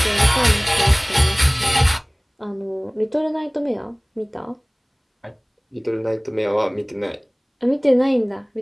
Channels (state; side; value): identical; both; correlation 1.00